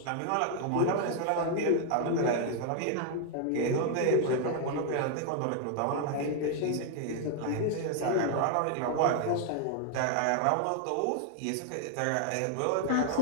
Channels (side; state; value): both; different; correlation 0.00